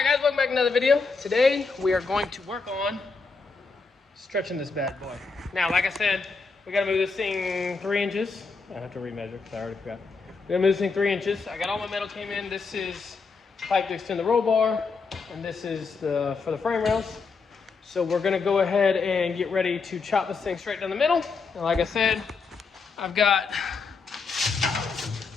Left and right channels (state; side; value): quieter; right; 4.6 dB